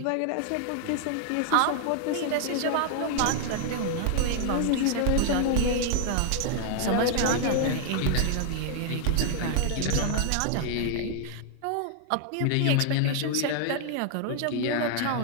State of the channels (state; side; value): different; both; correlation 0.00